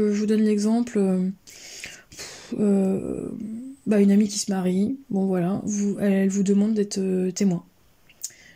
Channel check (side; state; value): both; identical; correlation 1.00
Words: vous donne l'exemple... une amie qui se marie, bon voilà, elle vous demande d'être témoin.